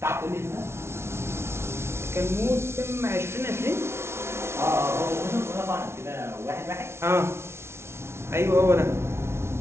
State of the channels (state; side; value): late; left; 0.12 ms